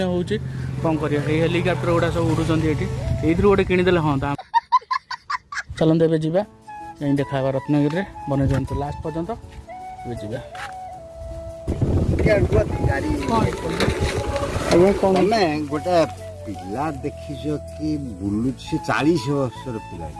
ହେଉଛି କ'ଣ କରିବା ଏଇ ହେଲିକପ୍ଟର ଗୁଡ଼ା ସବୁ ଉଡ଼ୁଛନ୍ତି ଏଠି ଏଇଥିରୁ ଗୋଟେ କିଣିଦେଲେ ହଁ ଚାଲନ୍ତୁ ଏବେ ଯିବା ଯାଇ ଦେଖା ହେବା ରତ୍ନଗିରିରେ ବନେଇଦିଅନ୍ତୁ ଲାଷ୍ଟ ପର୍ଯ୍ୟନ୍ତ ଏବେ ଯିବା। ତମେ ଗୋଟେ ପିଲା ଦେଖିଛ କି ବୁଲୁଛି 40 ବର୍ଷର ପିଲା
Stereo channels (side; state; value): both; identical; correlation 1.00